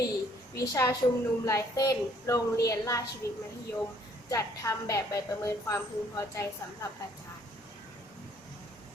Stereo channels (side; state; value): both; normal; correlation 0.62